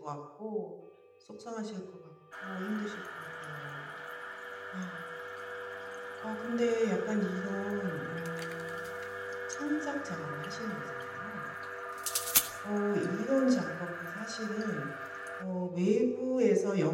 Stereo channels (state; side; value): identical; both; correlation 1.00